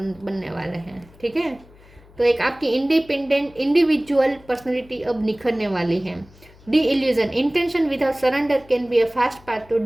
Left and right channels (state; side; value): noise; left; hum, 25 dB below the sound